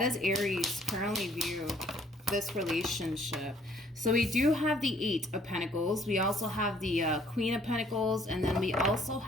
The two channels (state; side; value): normal; both; correlation 0.62